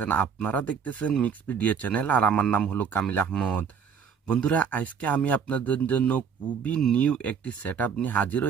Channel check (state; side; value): quieter; left; 6.7 dB